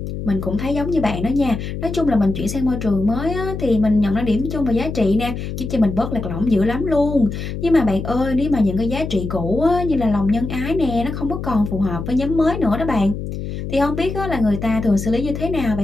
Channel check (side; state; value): left; noise; hum, 6 dB below the sound